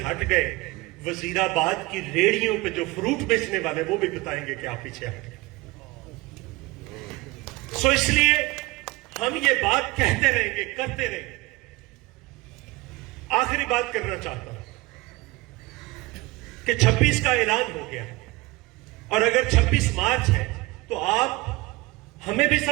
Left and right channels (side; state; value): left; quieter; 21.8 dB